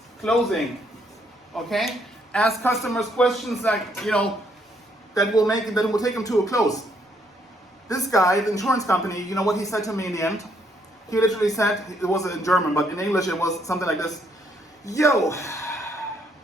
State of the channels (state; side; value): normal; both; correlation 0.71